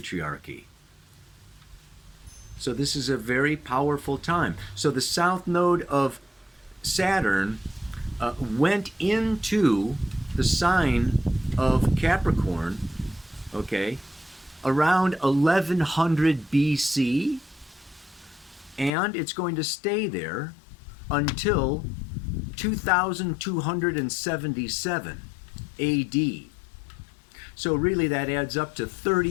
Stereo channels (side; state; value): right; drops out; at 18.9 s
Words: So this is a very powerful time. So the south node of Saturn went into the sign of Capricorn, okay, around 1100 BC, and it's going to stay there until 2277 AD. So really that adds up to